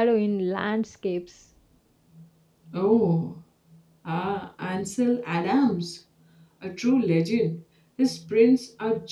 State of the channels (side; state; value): both; identical; correlation 1.00